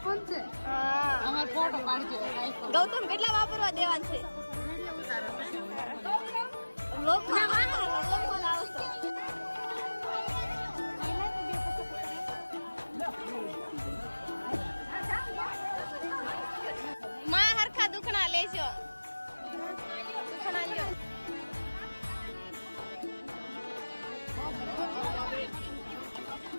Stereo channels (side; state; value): both; inverted; correlation -1.00